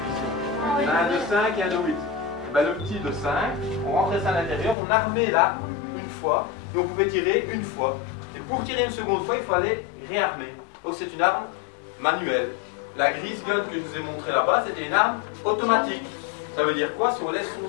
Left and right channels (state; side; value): drops out; right; at 4.8 s